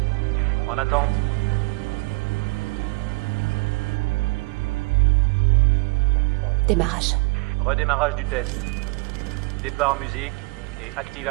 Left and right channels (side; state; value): left; quieter; 26.3 dB